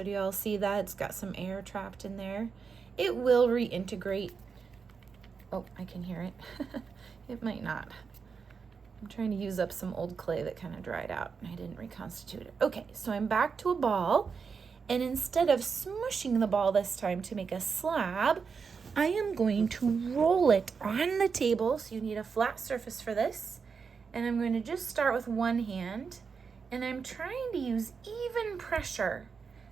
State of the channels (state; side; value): quieter; left; 5.6 dB